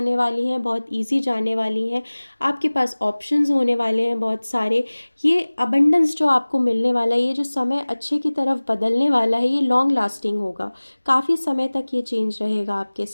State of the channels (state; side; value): inverted; both; correlation -1.00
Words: वाली हैं, बहुत इजी जाने वाली हैं. आपके पास ऑप्शंस होने वाले हैं बहुत सारे. ये अबंडेंस जो आपको मिलने वाला है, ये जो समय अच्छे की तरफ बदलने वाला है, ये लॉन्ग लास्टिंग होगा. काफ़ी समय तक ये चेंज रहेगा आपके